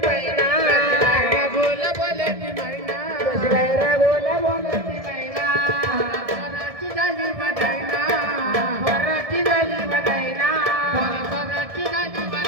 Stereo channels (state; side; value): late; left; 1.7 ms